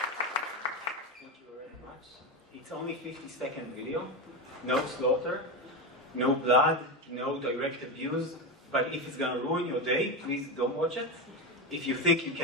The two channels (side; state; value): both; normal; correlation 0.15